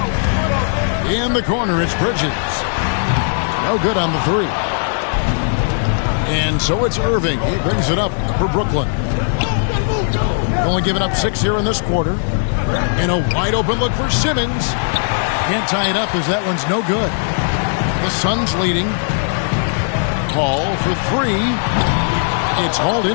In the corner, it's Bridges. No good on the 3. And so it's Irving. He brings it up for Brooklyn. Only giving up 6 here in this quarter. And a wide open look for Simmons. Can't tie it up as that one's no good. The Suns leading. Paul for 3. It's hauled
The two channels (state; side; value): silent; right; 66 dB below the other